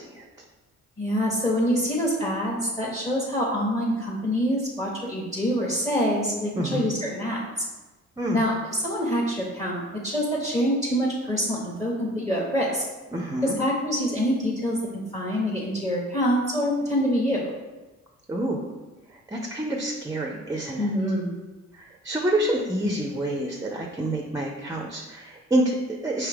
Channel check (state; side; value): normal; both; correlation 0.51